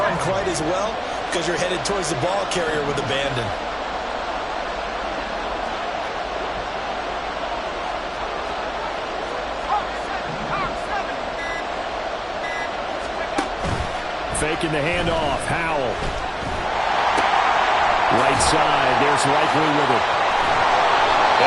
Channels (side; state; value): both; identical; correlation 1.00